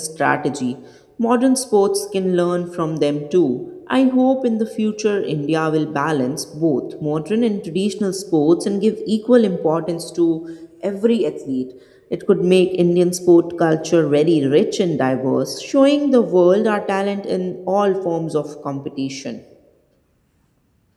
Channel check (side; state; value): both; identical; correlation 1.00